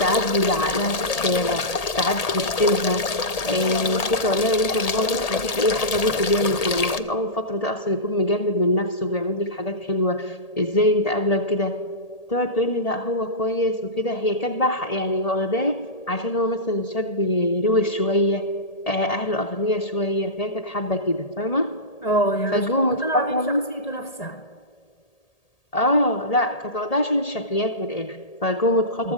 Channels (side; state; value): right; late; 1.8 ms